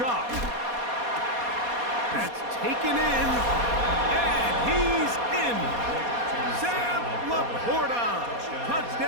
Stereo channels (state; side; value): late; left; 4.2 ms